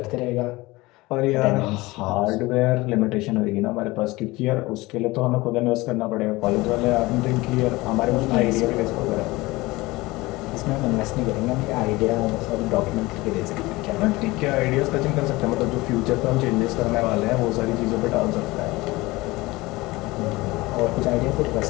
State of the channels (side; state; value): right; quieter; 21.0 dB